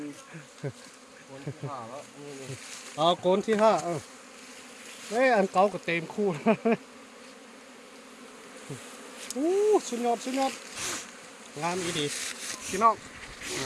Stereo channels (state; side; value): identical; both; correlation 1.00